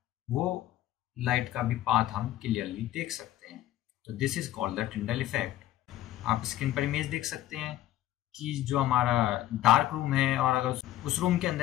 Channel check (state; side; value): quieter; right; 13.9 dB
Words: वो लाइट का भी पाथ हम क्लियरली देख सकते हैं। तो this is called the Tyndall effect. आप स्क्रीन पर इमेज देख सकते हैं कि जो हमारा डार्क रूम है और अगर उस रूम के